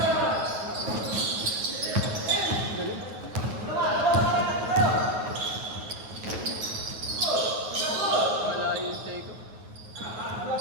Malayo yung take ko.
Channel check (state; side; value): late; left; 9.3 ms